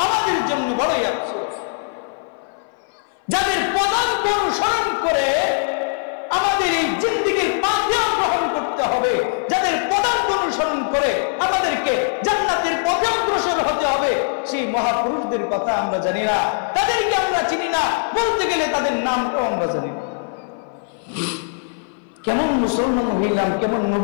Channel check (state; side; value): silent; right; 58 dB below the other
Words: আমাদের জন্য বড়ই আফসোস, যাদের পদাঙ্ক অনুসরণ করে আমাদের এই জিন্দেগীর পাথেয় গ্রহণ করতে হবে, যাদের পদাঙ্ক অনুসরণ করে আমাদেরকে জান্নাতের পথে অগ্রসর হতে হবে, সেই মহাপুরুষদের কথা আমরা জানি না, তাদেরকে আমরা চিনি না, বলতে গেলে তাদের নামটাও আমরা জানি না। কেমন মুসলমান হইলাম, কেমন